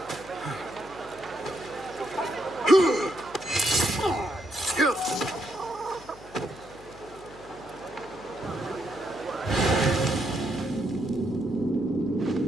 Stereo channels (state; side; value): noise; left; hum, 20 dB below the sound